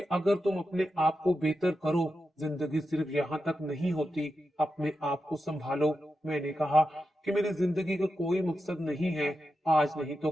अगर तुम अपने आप को बेहतर करो, जिंदगी सिर्फ यहाँ तक नहीं होती, अपने आप को संभालो। मैंने कहा कि मेरी जिंदगी का कोई मकसद नहीं है, आज नहीं तो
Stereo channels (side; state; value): both; normal; correlation 0.89